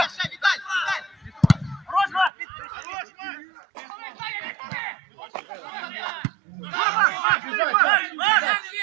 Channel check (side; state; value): left; drops out; at 2.3 s